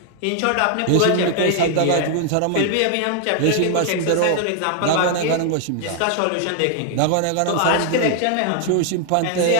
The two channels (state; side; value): different; both; correlation 0.00